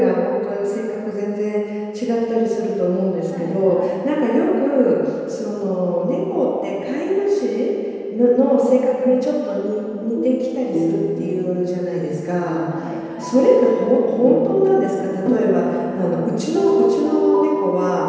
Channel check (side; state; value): both; identical; correlation 1.00